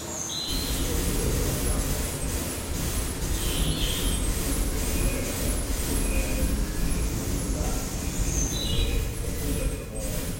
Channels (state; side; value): identical; both; correlation 1.00